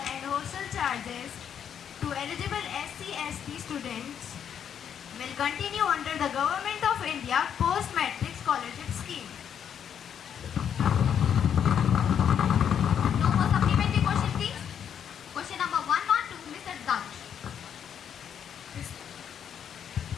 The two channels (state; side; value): quieter; right; 8.5 dB